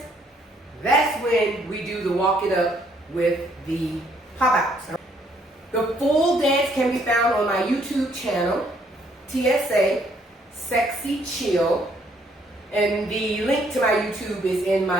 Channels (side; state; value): both; normal; correlation 0.67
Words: That's when we do the walk it up with the pop outs. The full dance can be found on my YouTube channel, TSA Sexy Chill, and the link to my YouTube is in